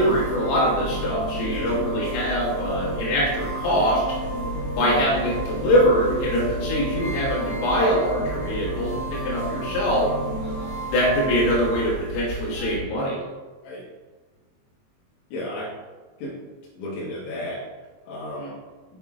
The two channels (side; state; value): right; late; 22 ms